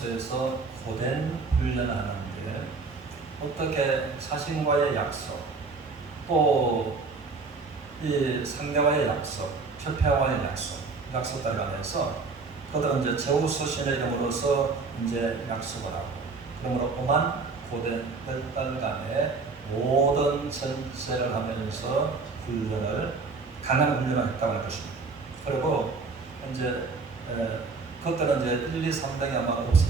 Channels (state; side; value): quieter; left; 4.3 dB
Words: 고된 훈련을 하는데 어떻게 자신과의 약속, 또 이 상대와의 약속, 협회와의 약속 따라가면서 그들은 이제 제우스신의 이름으로서 이제 약속을 하고 그러므로 오만 고된 10달간의 모든 전체를 하면서 강한 훈련을 했다고 할 것입니다. 그리고 이제 그때는 이제 1, 2, 3등이 아마